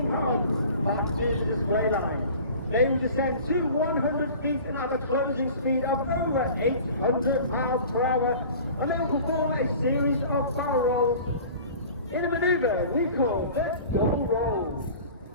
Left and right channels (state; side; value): inverted; both; correlation -0.42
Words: pounds back to the display line. They will descend to 100 feet at a closing speed of over 800 miles per hour, and they will perform a series of barrel rolls in a manoeuvre we call the double rolls.